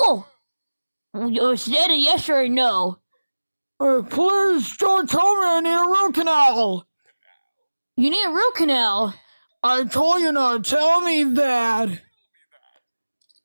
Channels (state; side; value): inverted; both; correlation -1.00